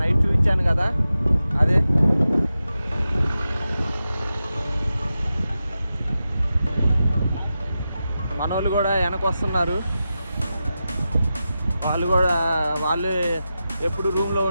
నైట్ చూపించాను కదా, అదే మనోళ్ళు కూడా వెనక వస్తున్నారు. వాళ్ళు ఎప్పుడు రూమ్లో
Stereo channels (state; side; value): inverted; both; correlation -0.91